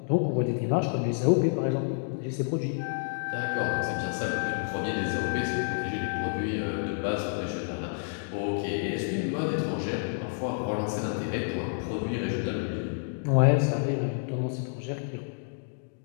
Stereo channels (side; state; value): right; silent; digital silence